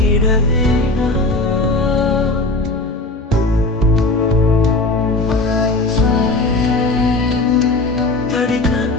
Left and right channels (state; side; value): quieter; right; 3.0 dB